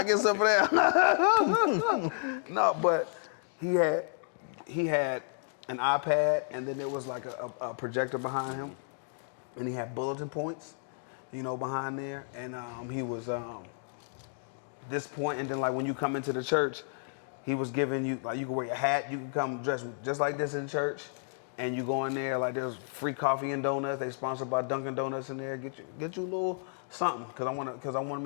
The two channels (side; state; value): right; silent; digital silence